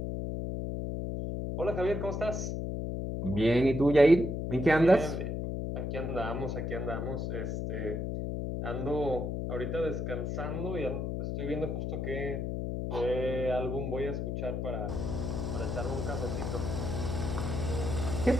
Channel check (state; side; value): noise; left; hum, 2 dB below the sound